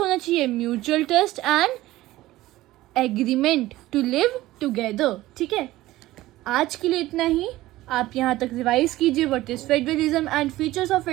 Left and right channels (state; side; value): quieter; left; 16.7 dB